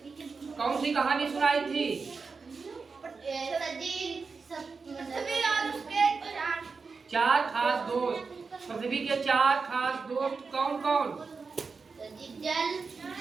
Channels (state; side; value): quieter; left; 4.8 dB